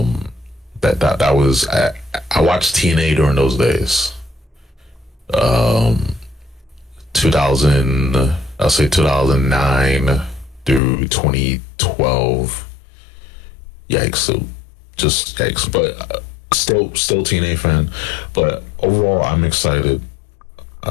That was I watched TNA during those days. 2009 through 2012. Yikes! So just yikes. But still TNA fan. But overall, I'm excited.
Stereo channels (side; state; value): right; drops out; at 10.8 s